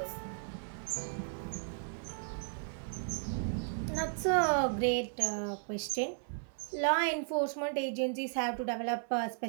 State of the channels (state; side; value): silent; left; 54 dB below the other